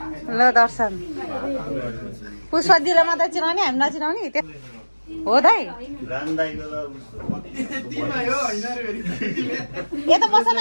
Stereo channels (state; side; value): inverted; both; correlation -1.00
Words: ल दर्शन पुष्पा दिदीलाई मात्रै चिनाउने हामी नचिनाउने हो दाइ यता बस्छ न